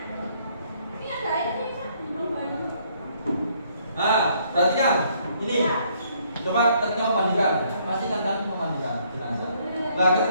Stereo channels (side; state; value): both; inverted; correlation -0.67